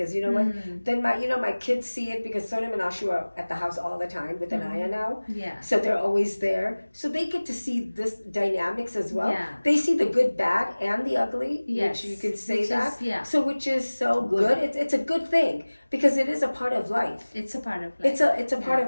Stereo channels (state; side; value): inverted; both; correlation -1.00